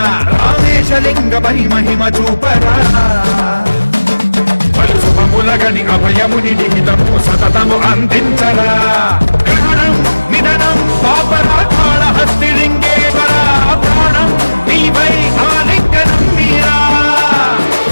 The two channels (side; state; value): both; inverted; correlation -1.00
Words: రామేశలింగమై మహిమ చూపరా పలు శుభములగని అభయముని నిహితము సతతము అందించరా గ్రహణం నిధనం పాపరా కాళహస్తిలింగేశ్వర ప్రాణం నీవై ఆలింగనం మీరా